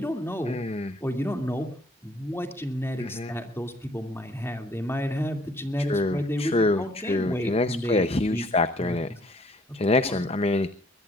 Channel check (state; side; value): normal; both; correlation 0.61